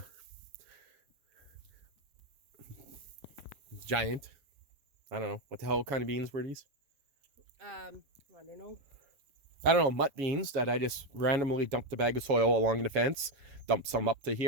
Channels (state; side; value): late; left; 7.3 ms